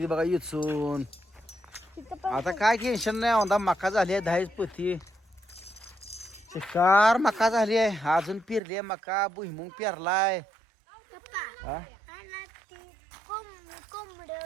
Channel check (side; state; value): left; drops out; at 8.6 s